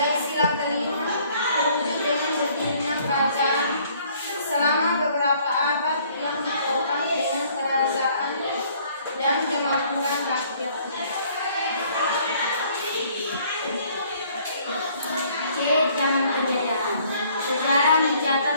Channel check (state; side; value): inverted; both; correlation -0.60